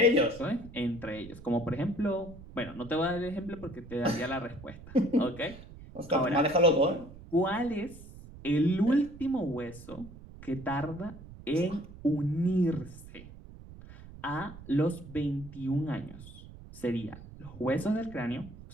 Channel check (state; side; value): noise; right; rumble, 16 dB below the sound